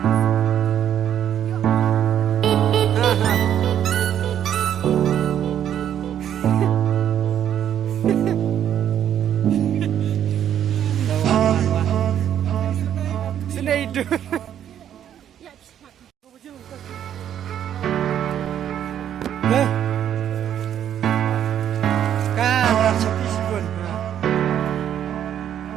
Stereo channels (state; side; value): quieter; left; 10.0 dB